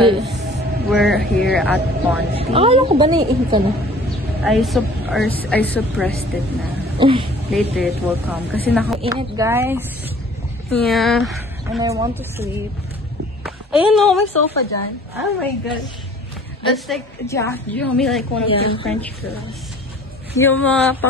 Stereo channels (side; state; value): both; normal; correlation 0.50